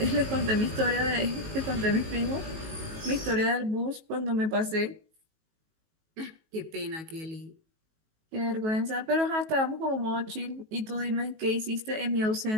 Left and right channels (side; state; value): left; late; 19 ms